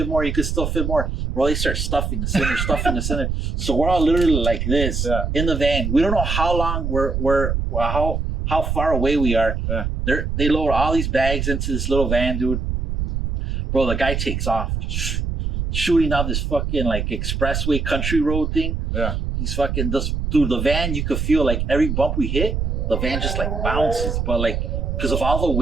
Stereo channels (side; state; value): right; noise; rumble, 2 dB below the sound